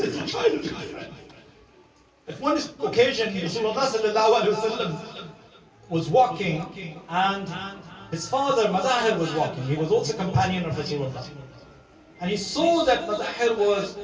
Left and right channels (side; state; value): both; identical; correlation 1.00